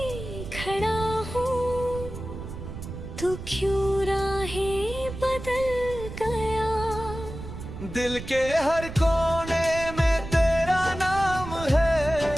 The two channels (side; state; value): right; noise; rumble, 10 dB below the sound